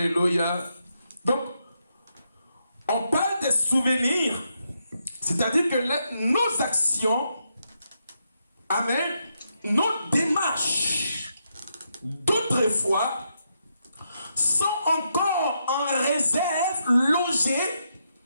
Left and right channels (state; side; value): inverted; both; correlation -0.81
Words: Donc, on parle des souvenirs, c'est-à-dire que nos actions, amen, nos démarches d'autrefois sont encore en réserve, logées